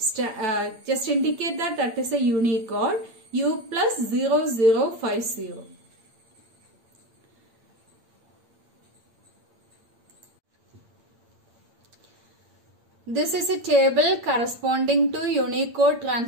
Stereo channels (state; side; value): late; left; 8.8 ms